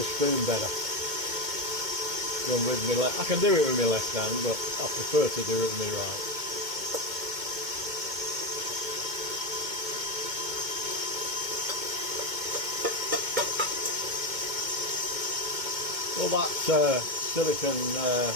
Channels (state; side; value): late; left; 2.2 ms